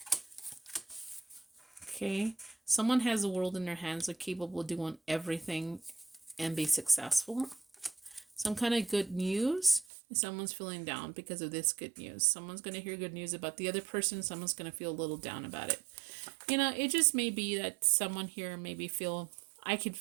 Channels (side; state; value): left; drops out; at 9.9 s